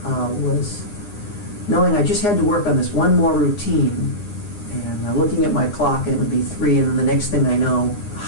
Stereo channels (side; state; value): right; late; 9.8 ms